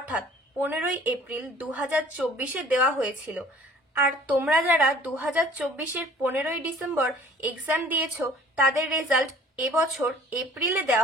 15ই এপ্রিল 2024-এ দেওয়া হয়েছিল। আর তোমরা যারা 2024-এর 15ই ডিসেম্বর এক্সাম দিয়েছো তাদের রেজাল্ট এবছর এপ্রিলে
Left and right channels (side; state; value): both; normal; correlation 0.52